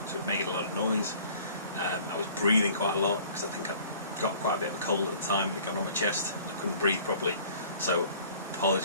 so it made a lot of noise. I was breathing quite a lot because I think I got quite a bit of a cold at the time. It got on my chest. I couldn't breathe properly, so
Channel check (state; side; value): inverted; both; correlation -0.50